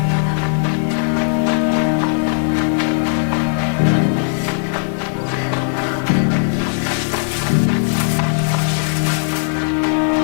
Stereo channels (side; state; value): right; silent; digital silence